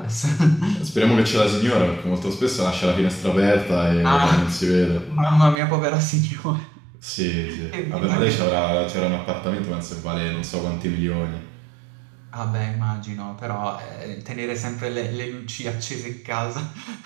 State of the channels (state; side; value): drops out; left; at 5.6 s